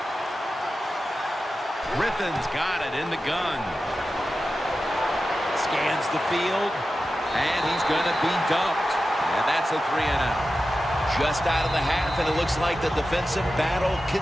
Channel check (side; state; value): both; normal; correlation 0.93